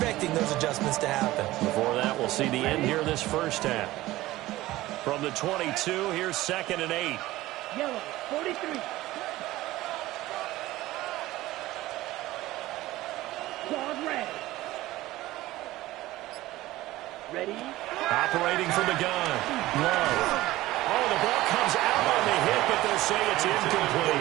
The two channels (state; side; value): quieter; left; 17.1 dB